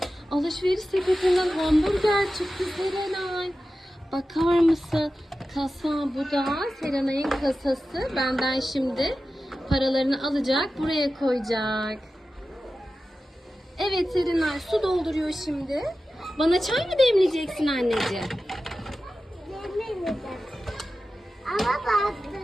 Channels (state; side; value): normal; both; correlation 0.94